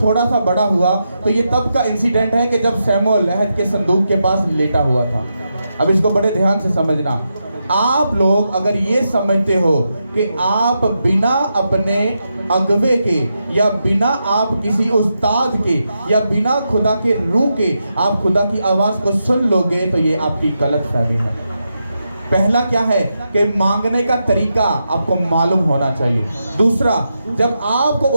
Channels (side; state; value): both; inverted; correlation -0.86